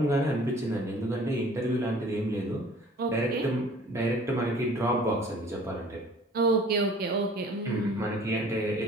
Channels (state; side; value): normal; both; correlation 0.50